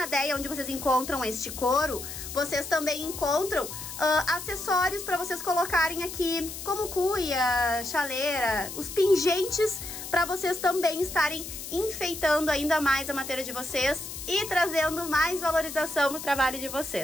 Deia, onde vocês encontram este couro, vocês também encontram acessórios para vocês colocarem aqui, como cuia, chaleira, os pingentes, para vocês também estarem enfeitando ainda mais a matéria de vocês e trazendo mais valorização pro trabalho de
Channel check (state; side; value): noise; left; hiss, 9 dB below the sound